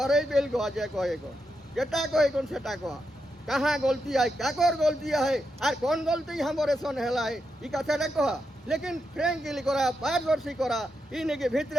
बेल गो जे कहे को जेटा कहे कोन सेटा कह कहाँ गलती है काकर गलती है और कौन गलती हमरे सन हेला है ई कथाटा कह लेकिन फ्रेंकली करा पारदर्शी करा इन के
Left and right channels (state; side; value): normal; both; correlation 0.85